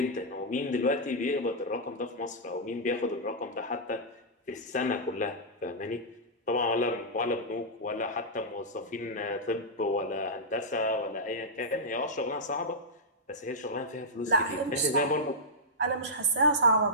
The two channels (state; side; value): normal; both; correlation -0.11